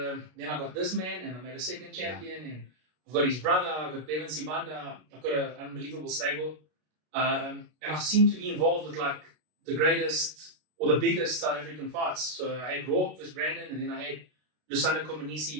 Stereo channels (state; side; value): late; left; 33 ms